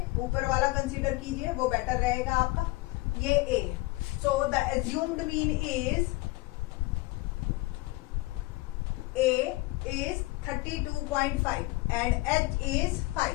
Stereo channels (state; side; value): quieter; right; 21.4 dB